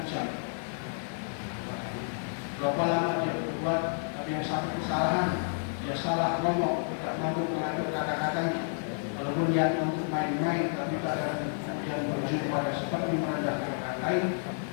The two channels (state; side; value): silent; right; digital silence